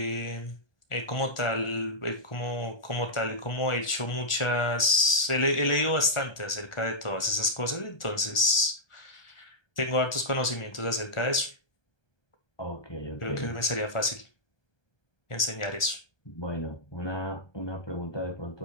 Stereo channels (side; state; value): right; late; 1.4 ms